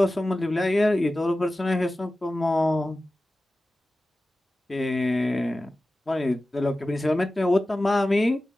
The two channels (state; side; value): normal; both; correlation 0.95